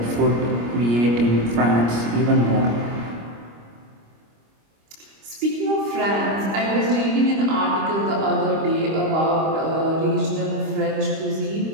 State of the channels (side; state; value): left; late; 25 ms